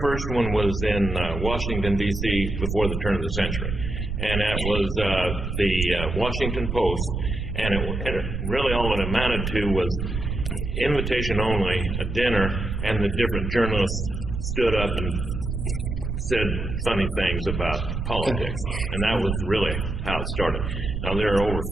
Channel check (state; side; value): noise; right; rumble, 4 dB below the sound